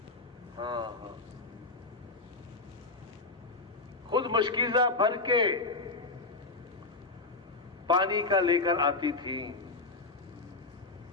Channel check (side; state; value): right; quieter; 3.5 dB